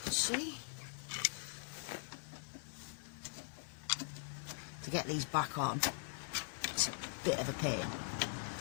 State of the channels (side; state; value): right; silent; digital silence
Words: can see. To get these back on, it's a bit of a pain.